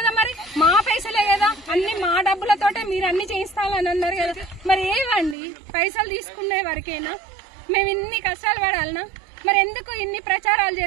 మరి మా పైసలే కదా, అన్ని మా డబ్బులతోటే మీరు అన్ని చేయిస్తామని అన్నారు కదా. మరి ఏవండి పైసలు తీసుకునే వరకేనా మేము ఇన్ని కష్టాలు పడాలనా? మరి ఎందుకు ఇన్ని ప్రచారాలు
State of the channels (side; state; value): left; drops out; at 5.4 s